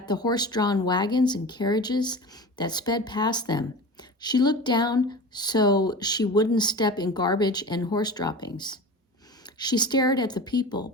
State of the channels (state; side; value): normal; both; correlation 0.33